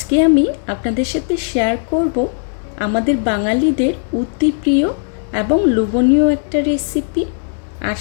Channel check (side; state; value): right; silent; 65 dB below the other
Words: আমি আপনাদের সাথে শেয়ার করব আমাদের বাঙালিদের অতি প্রিয় এবং লোভনীয় একটা রেসিপি, আর